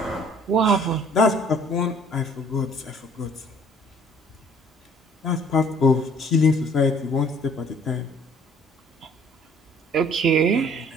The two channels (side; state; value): both; normal; correlation 0.56